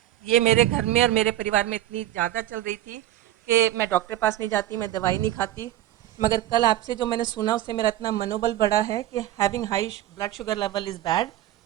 ये मेरे घर में और मेरे परिवार में इतनी ज़्यादा चल रही थी कि मैं डॉक्टर के पास नहीं जाती, मैं दवाई नहीं खाती। मगर कल आपसे जो मैंने सुना उससे मेरा इतना मनोबल बढ़ा है कि having high blood sugar level is bad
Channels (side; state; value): left; quieter; 13.6 dB